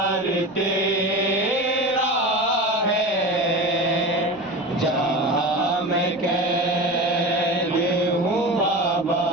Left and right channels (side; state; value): right; noise; rumble, 27 dB below the sound